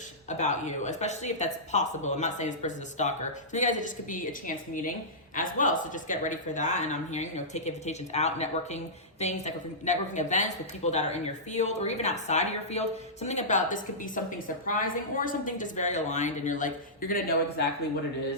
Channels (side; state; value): both; normal; correlation -0.16